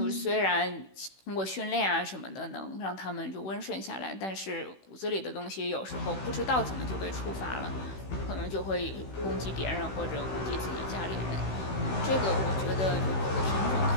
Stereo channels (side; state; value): right; late; 16 ms